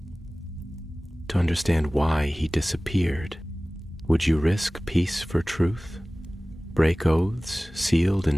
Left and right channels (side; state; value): both; normal; correlation 0.98